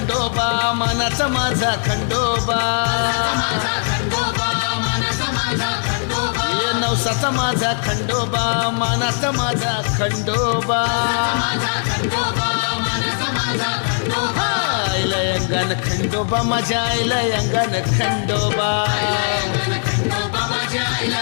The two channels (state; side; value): silent; right; 56 dB below the other